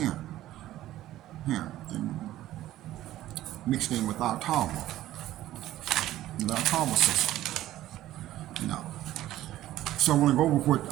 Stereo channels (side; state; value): left; quieter; 14.3 dB